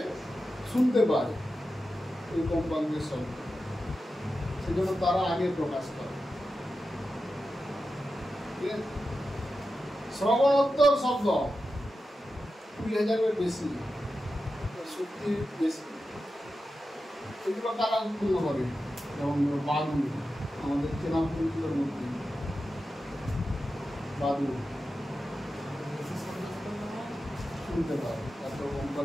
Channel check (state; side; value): normal; both; correlation 0.91